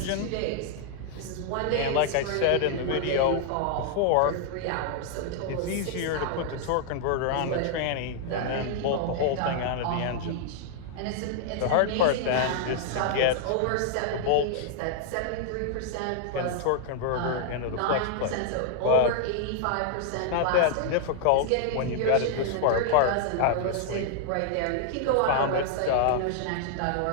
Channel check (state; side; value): different; both; correlation 0.00